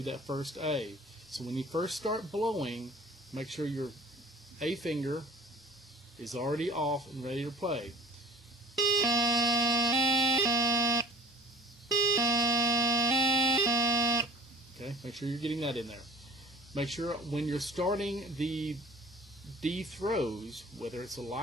that first A. So when you first start blowing, make sure your A finger is already off and ready to play. Okay, make sure you're getting that in there. Make sure when you're starting the D throws, whether it's a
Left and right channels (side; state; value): both; normal; correlation 0.44